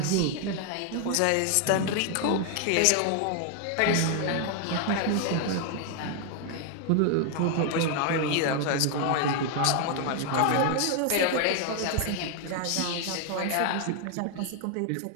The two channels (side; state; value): both; different; correlation 0.00